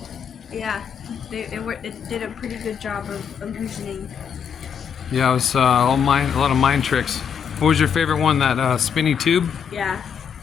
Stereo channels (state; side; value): quieter; right; 7.4 dB